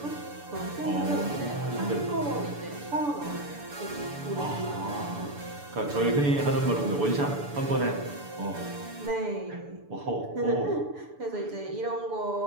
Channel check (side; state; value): left; late; 6.9 ms